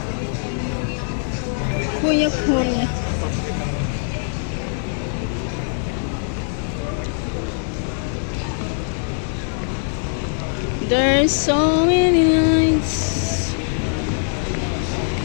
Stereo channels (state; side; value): silent; right; 64 dB below the other